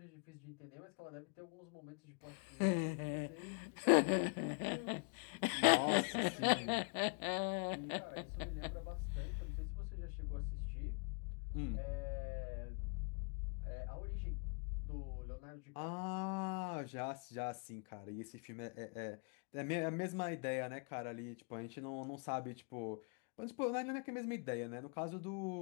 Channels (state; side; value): quieter; right; 36.7 dB